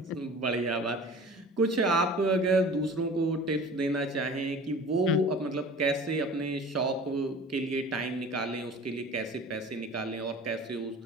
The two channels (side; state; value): both; normal; correlation 0.42